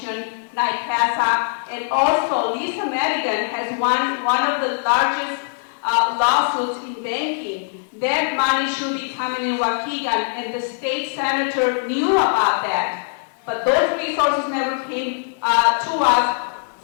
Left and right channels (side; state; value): right; silent; digital silence